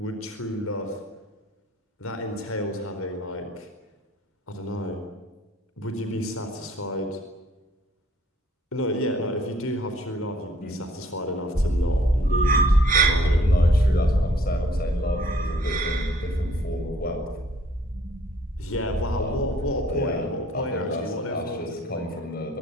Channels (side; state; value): both; normal; correlation 0.59